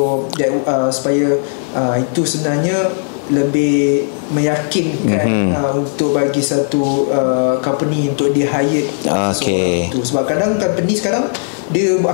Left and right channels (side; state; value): right; silent; 66 dB below the other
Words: that supaya itu sebenarnya lebih meyakinkan untuk bagi satu company untuk dia hire tu. Sebab kadang company sekarang dia